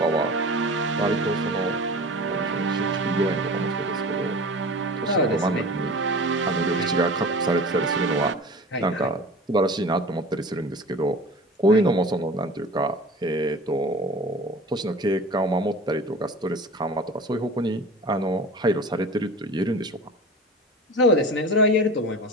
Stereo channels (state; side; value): normal; both; correlation 0.38